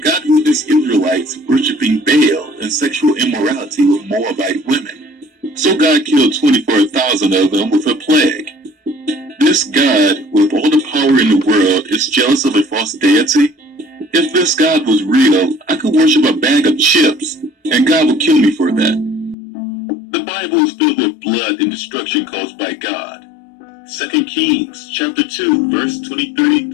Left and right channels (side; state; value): right; drops out; at 19.4 s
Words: God witnessed Israelites worshiping Baal and sexual immorality with Moabite women. So God killed 24,000 of them with a plague. This God, with all the power in the world, is jealous of a false deity? If this God was real, I could worship a bag of chips, and God would kill me for that. The Bible is filled with blood and destruction caused by God. 2 Kings chapter 2, verse 23